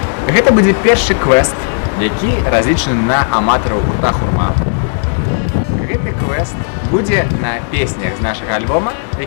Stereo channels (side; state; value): right; silent; digital silence